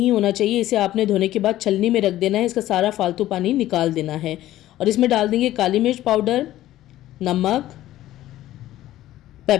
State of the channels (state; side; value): quieter; right; 14.3 dB